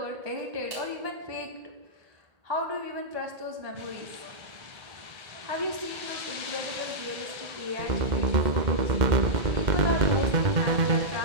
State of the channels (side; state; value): left; late; 1.8 ms